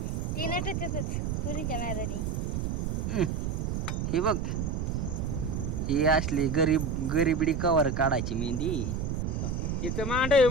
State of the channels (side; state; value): right; noise; rumble, 1 dB below the sound